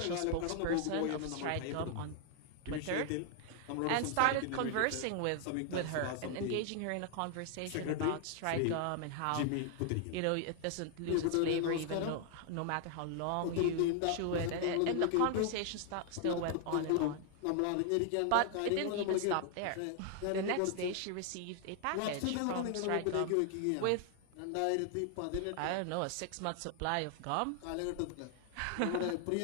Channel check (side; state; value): both; different; correlation 0.00